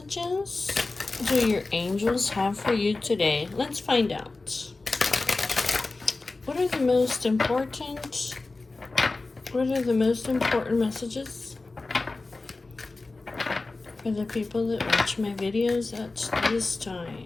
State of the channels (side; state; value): right; quieter; 3.4 dB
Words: do your angels have for you today? Let's find out. What are the most important messages for the people that watch my videos at this